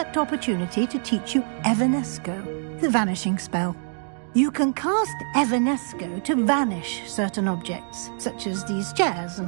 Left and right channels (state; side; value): silent; left; digital silence